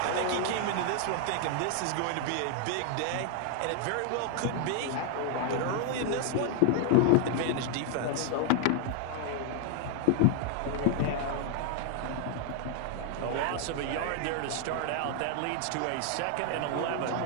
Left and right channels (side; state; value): both; different; correlation 0.00